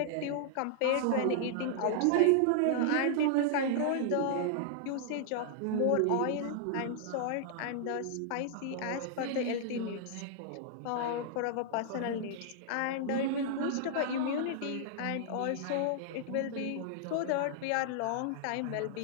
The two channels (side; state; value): both; different; correlation -0.01